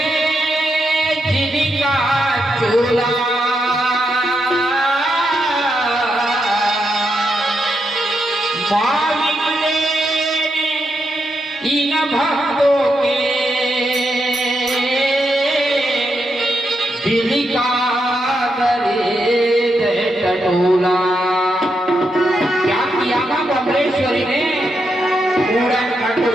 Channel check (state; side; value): normal; both; correlation 0.83